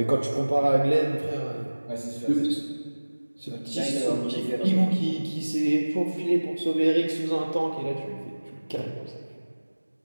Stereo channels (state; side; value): inverted; both; correlation -1.00